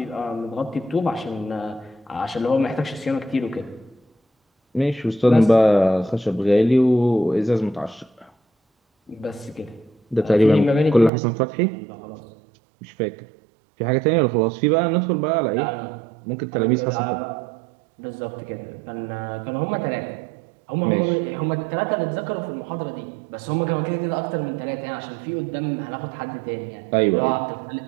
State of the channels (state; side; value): drops out; left; at 11.1 s